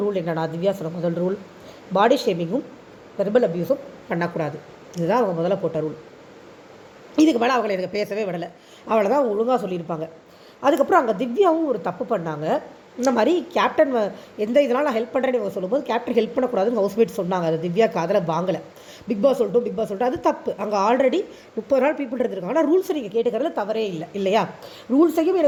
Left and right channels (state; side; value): identical; both; correlation 1.00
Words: என்னன்னா, திவ்யா சொன்ன முதல் ரூல், பாடி ஷேமிங்கும் வெர்பல் அப்யூஸும் பண்ணக்கூடாது. இதுதான் அவங்க முதல்ல போட்ட ரூல். இதுக்கு மேலே அவங்களை எனக்கு பேசவே விடலை. அவளை தான் ஒழுங்காக சொல்லியிருப்பாங்க. அதுக்கப்புறம் அங்கே திவ்யாவும் ஒரு தப்பு பண்ணாங்க. இந்த மாதிரி கேப்டன் எந்த இதனால் நான் ஹெல்ப் பண்ணுறேன்னு இவங்க சொல்லும்போது கேப்டன் ஹெல்ப் பண்ணக்கூடாதுன்னு ஹவுஸ்மேட் சொன்னாங்க. அது திவ்யா காதில் வாங்கலை. பிக் பாஸ் சொல்லிட்டு அது தப்பு. அங்கே ஆல்ரெடி 30 நாள் பீப்புள் இருந்திருக்காங்க. ஆனால் ரூல்ஸை நீங்கள் கேட்டுக்கிறதுல தவறே இல்லையா? ரூல்ஸையும்